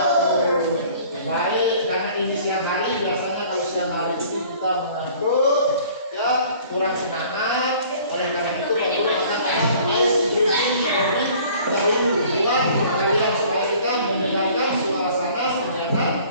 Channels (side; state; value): both; inverted; correlation -0.52